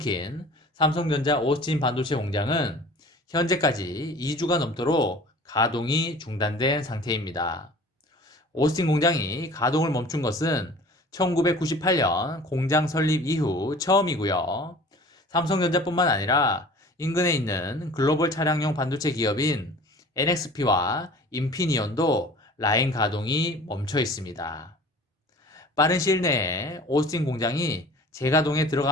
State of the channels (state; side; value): normal; both; correlation 0.45